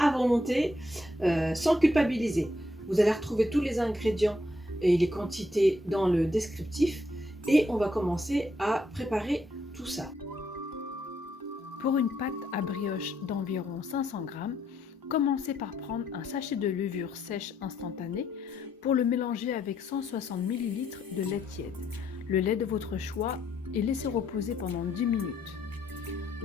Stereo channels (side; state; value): both; normal; correlation 0.74